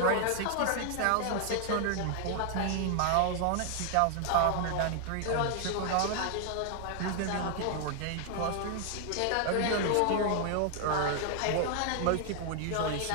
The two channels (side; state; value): both; different; correlation 0.00